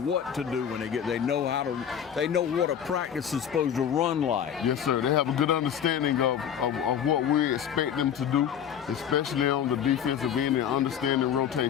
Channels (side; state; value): right; quieter; 8.8 dB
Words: what to do when they know what a practice is supposed to run like. Yes, sir. They have a good understanding of what we expect them to do, especially on the defensive end and understanding